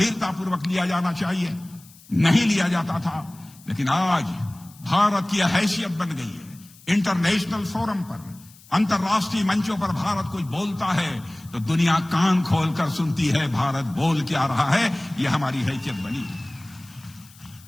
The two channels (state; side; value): noise; left; hiss, 24 dB below the sound